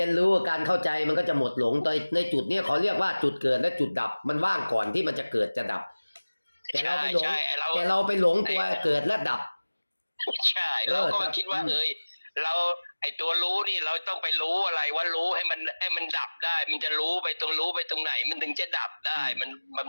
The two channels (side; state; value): both; inverted; correlation -1.00